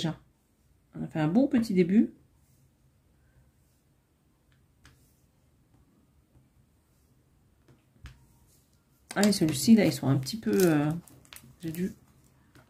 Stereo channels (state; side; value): identical; both; correlation 1.00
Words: On a fait un bon petit début. Ah, et celui-ci, là, ils sont un petit peu... J'ai dû...